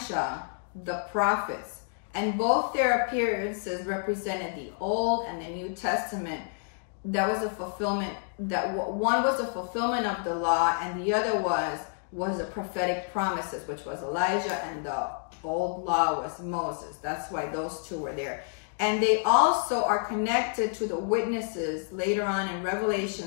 the prophets. And both their appearances represented the Old and the New Testament. That was a fulfillment, that one was the fulfillment of the law, and the other was the prophetic promises, which was Elijah, and the old law was Moses. That's why those two were there. And they also are connected to the witnesses later on in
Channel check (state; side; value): silent; right; 59 dB below the other